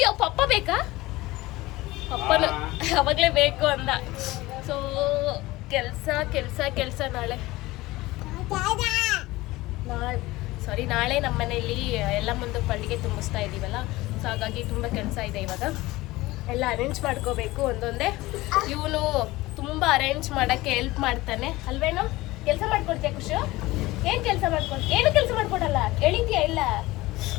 ಪಪ್ಪ ಬೇಕಾ? ಪಪ್ಪನ ಅವಾಗಲೇ ಬೇಕು ಅಂದ. ಸೊ ಕೆಲಸ ಕೆಲಸ ಕೆಲಸ. ನಾಳೆ ನಮ್ಮ ಮನೆಯಲ್ಲಿ ಎಲ್ಲ ಮುಂದೆ ಪಳ್ಳಿಗೆ ತುಂಬಿಸ್ತಾ ಇದ್ದೀವಲ್ಲ, ಸೊ ಹಾಗಾಗಿ ತುಂಬ ಕೆಲಸ ಇದೆ. ಇವಾಗ ಎಲ್ಲ ಅರೇಂಜ್ ಮಾಡ್ಕೋಬೇಕು ಒಂದೊಂದೇ. ಇವನು ತುಂಬ ಅರೇಂಜ್ ಮಾಡೋಕ್ಕೆ ಹೆಲ್ಪ್ ಮಾಡ್ತಾನೆ ಅಲ್ವೇನೋ? ಕೆಲಸ ಮಾಡ್ಕೊಡ್ತೀಯ ಖುಷು? ಏನು ಕೆಲಸ ಮಾಡ್ಕೊಡ್ತೀಯ? ಏನು ಕೆಲಸ ಮಾಡ್ಕೊಡಲ್ಲ, ಹೇಳಿದ್ಯಾ ಇಲ್ಲ?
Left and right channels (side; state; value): right; quieter; 19.3 dB